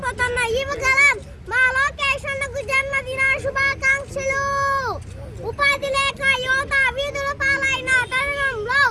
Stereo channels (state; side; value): identical; both; correlation 1.00